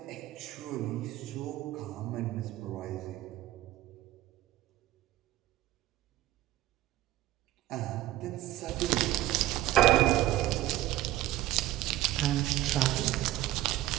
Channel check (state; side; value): quieter; left; 15.3 dB